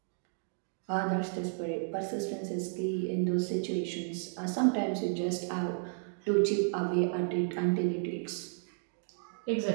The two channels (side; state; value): left; silent; 55 dB below the other